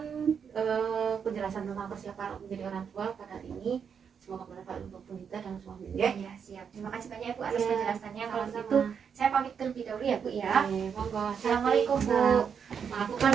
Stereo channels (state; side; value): quieter; left; 7.0 dB